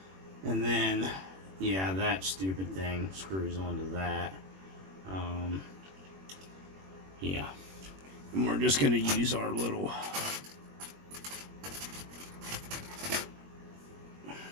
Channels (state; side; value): late; left; 21 ms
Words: And then, yeah, that stupid thing screws onto that. Yeah. And we're just going to use our little